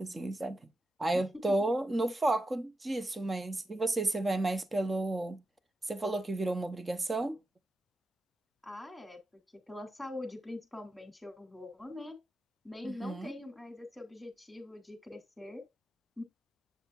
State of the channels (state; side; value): normal; both; correlation 0.89